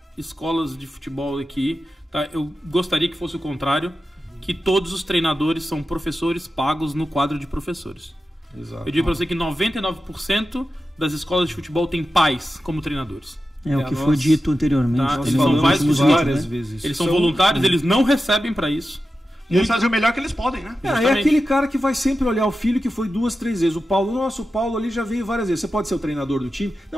escolas de futebol aqui, tá? Eu gostaria que fosse o contrário, que todos os treinadores são professores pagos no quadro de professores. Exato. Eu digo para você que 99% das escolas de futebol têm pais como treinadores. O que foi dito anteriormente. Tá? Eles são várias vezes. Eles são voluntários, eles não recebem para isso. E eles fazem o melhor que eles podem, né? É aquele cara que vai sempre olhar o filho que foi 2, 3 vezes. O Paulo ali já veio várias vezes. Você pode ser o treinador do time?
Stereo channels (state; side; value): normal; both; correlation 0.92